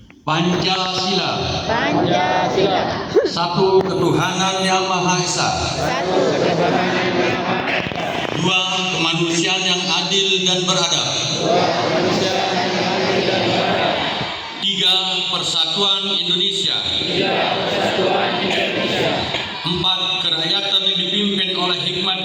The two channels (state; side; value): identical; both; correlation 1.00